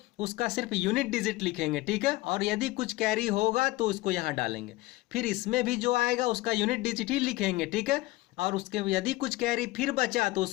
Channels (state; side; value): quieter; right; 19.4 dB